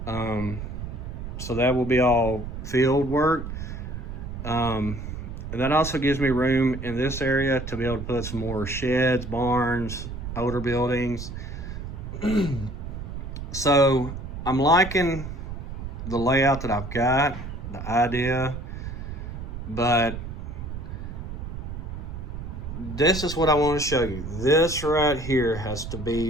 So that will be all field work. And that also gives me room in this area to be able to put some more sheds, barns, older buildings. So I'm liking the layout that I've got, the idea, but this is what I want to show you. This right here has to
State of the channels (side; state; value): right; noise; rumble, 7 dB below the sound